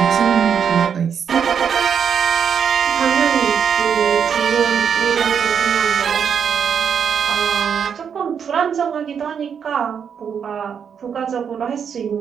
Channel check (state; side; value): quieter; left; 7.3 dB